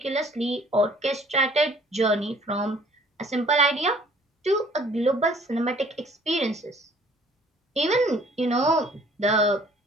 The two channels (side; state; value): both; normal; correlation 0.56